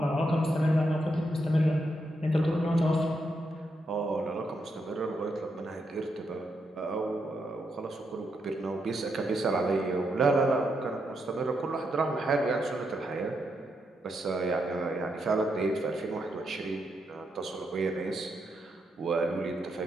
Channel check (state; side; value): normal; both; correlation 0.81